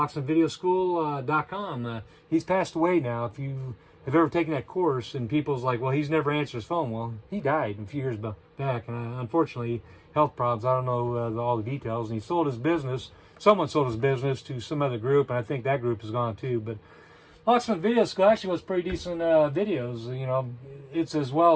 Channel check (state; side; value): identical; both; correlation 1.00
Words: he's passed away now. If you have ever taken that course, and people's like, well, he's never answered his phone. Well, he died a few years back, and unfortunately, health problems. I don't know all the details. And he sold his business. Someone sold his business to some other group, and I think that group is gone too. But Locksmith Video School actually was pretty decent videos. You know, it's as well